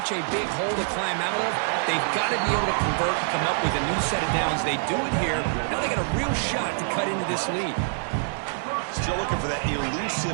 a big hole to climb out of, they've got to be able to convert and come up with a new set of downs. They do it here. Now they got a real shot to cut into this lead. Still looking for that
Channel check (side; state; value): left; silent; digital silence